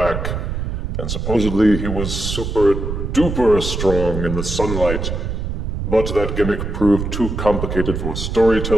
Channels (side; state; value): right; noise; rumble, 3 dB below the sound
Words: And supposedly he was super duper strong in the sunlight, but that gimmick proved too complicated for